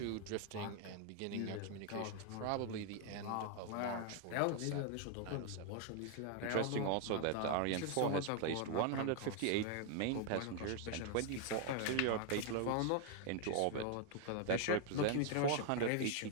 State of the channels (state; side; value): different; both; correlation 0.00